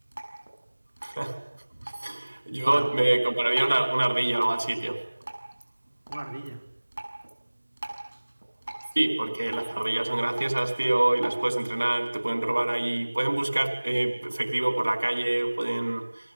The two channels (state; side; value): inverted; both; correlation -1.00